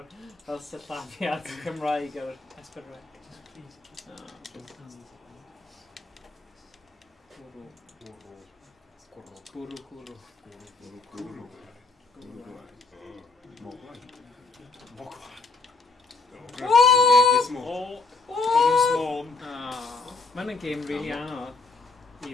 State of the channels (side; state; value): right; quieter; 4.0 dB